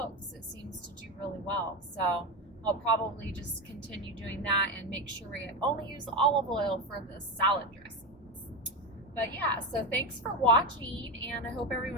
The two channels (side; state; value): both; normal; correlation 0.16